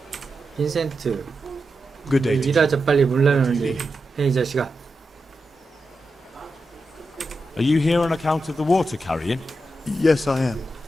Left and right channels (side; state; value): both; normal; correlation 0.88